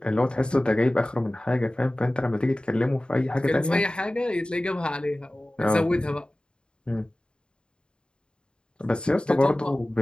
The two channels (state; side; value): late; right; 0.051 ms